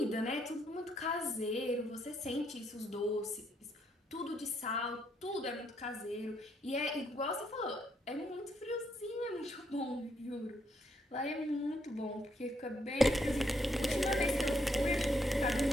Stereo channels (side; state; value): both; normal; correlation 0.74